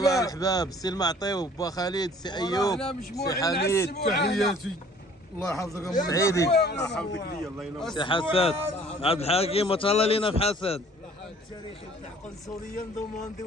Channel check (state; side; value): normal; both; correlation 0.53